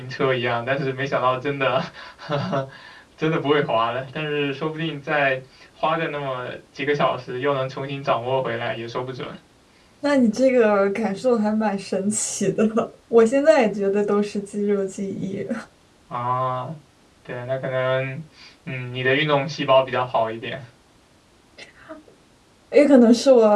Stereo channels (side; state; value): both; identical; correlation 1.00